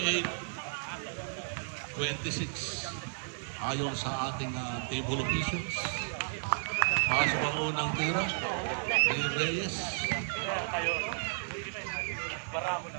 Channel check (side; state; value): left; silent; 56 dB below the other